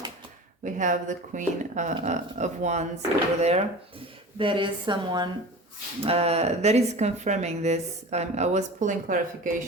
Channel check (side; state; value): both; normal; correlation 0.35